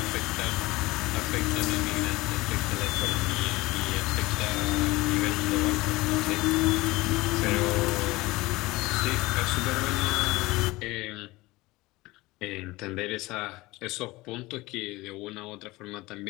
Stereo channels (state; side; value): quieter; right; 20.7 dB